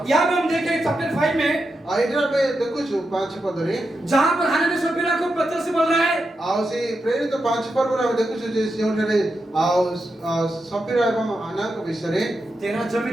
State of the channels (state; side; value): normal; both; correlation 0.87